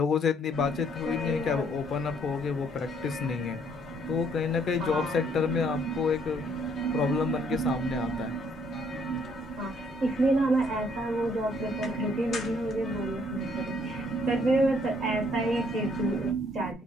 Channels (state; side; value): normal; both; correlation 0.66